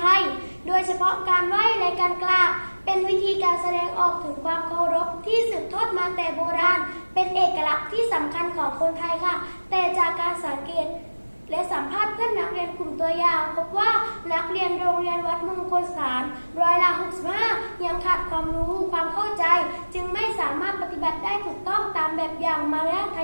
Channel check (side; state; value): both; inverted; correlation -1.00